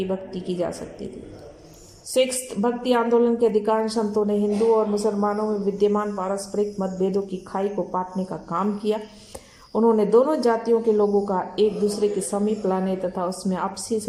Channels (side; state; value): both; identical; correlation 1.00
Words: भक्ति की जा सकती थी। सिक्स्थ, भक्ति आंदोलन के अधिकांश संतों ने हिंदू और मुसलमानों में विद्यमान पारस्परिक मतभेदों की खाई को पाटने का काम किया। उन्होंने दोनों जातियों के लोगों का एक दूसरे के समीप लाने तथा उसमें आपसी